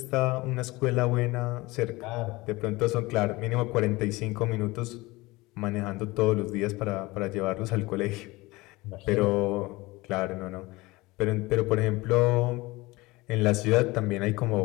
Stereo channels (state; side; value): quieter; right; 21.5 dB